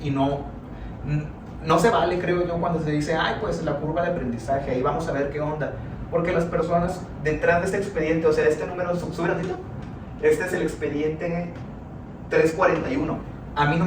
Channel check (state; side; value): identical; both; correlation 1.00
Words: y no se vale, creo yo, cuando se dice, ay, pues la curva de aprendizaje, ahí vamos a ver qué onda. Porque las personas detrás de este expediente, o sea, este número, sube ratito, este es el expediente 341. A mí no